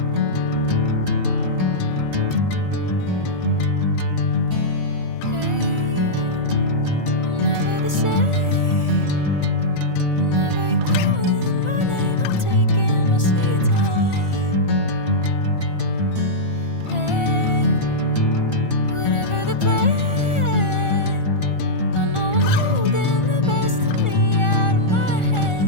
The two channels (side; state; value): right; late; 1.4 ms